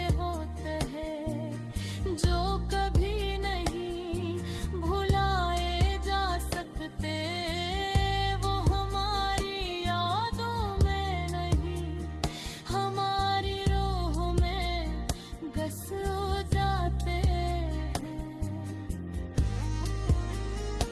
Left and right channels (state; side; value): identical; both; correlation 1.00